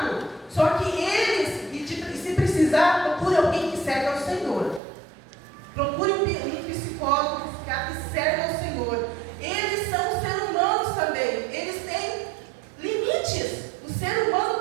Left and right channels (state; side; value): drops out; left; at 4.8 s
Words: Só que eles, se precisar, procure alguém que serve ao Senhor. Procure um psicólogo, um psiquiatra que serve ao Senhor. Eles são seres humanos também. Eles têm limites. O ser humano